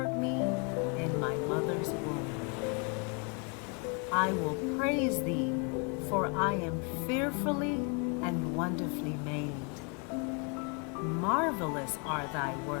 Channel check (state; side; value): quieter; right; 35.3 dB